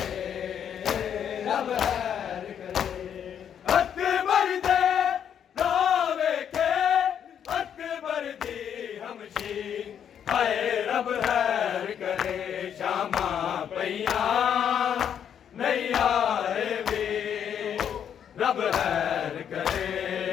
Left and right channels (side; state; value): right; quieter; 8.7 dB